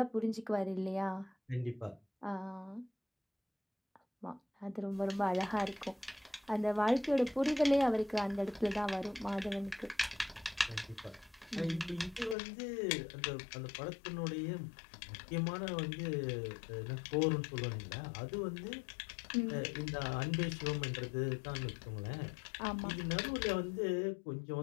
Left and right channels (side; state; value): right; drops out; at 12.4 s